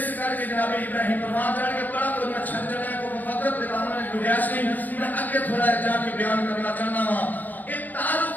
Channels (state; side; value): late; right; 0.086 ms